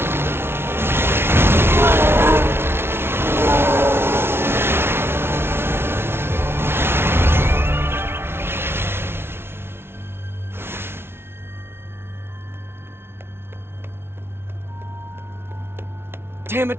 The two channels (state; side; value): late; left; 0.12 ms